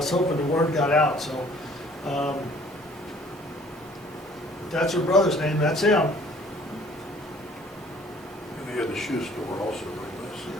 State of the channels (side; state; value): both; normal; correlation 0.56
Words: hoping the word got out, so, that's her brother's name, that's him. And they had the shoe store also,